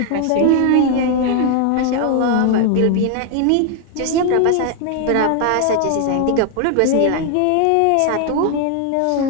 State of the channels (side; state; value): both; different; correlation 0.01